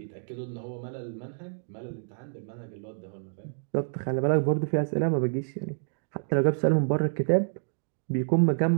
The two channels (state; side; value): silent; left; digital silence